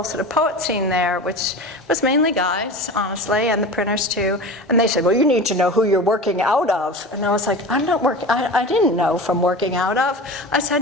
sort of poet scene there, which was mainly guys, honestly, and the printers too, and they said, "Well, you need to know who you're working out of." And I was like, "I'm not working, I didn't know from working out of." I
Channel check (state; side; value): normal; both; correlation 0.32